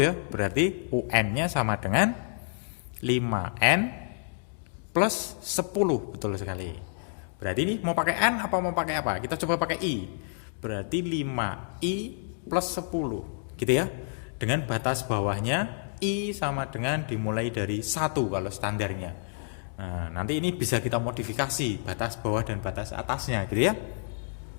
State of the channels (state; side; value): silent; right; digital silence